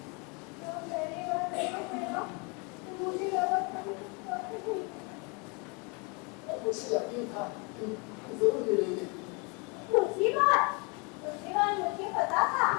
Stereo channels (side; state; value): right; quieter; 31.7 dB